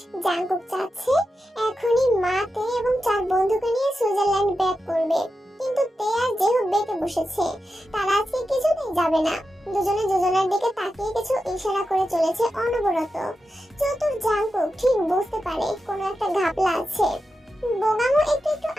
জাঙ্কুক চাচ্ছে এখনই মা তে এবং 4 বন্ধুকে নিয়ে সুইজারল্যান্ড ব্যাক করবে, কিন্তু তে আর যেহব বেঁকে বসেছে। তারা আজকে কিছুতেই যাবে না। দুজনে দুজনের দিকে তাকিয়ে কিছু ইশারা করে চলেছে অনবরত। চতুর জাঙ্কুক ঠিক বুঝতে পারে কোনো একটা ঘাপলা আছে। বোগামও একটু একটু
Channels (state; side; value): normal; both; correlation 0.90